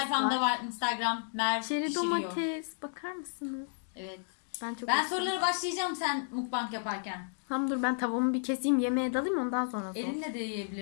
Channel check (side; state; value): right; silent; digital silence